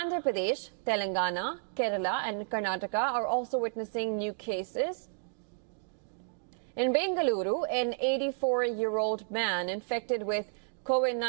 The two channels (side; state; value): left; silent; digital silence